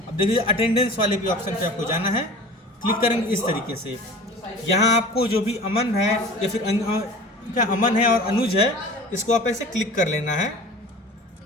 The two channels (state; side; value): normal; both; correlation 0.40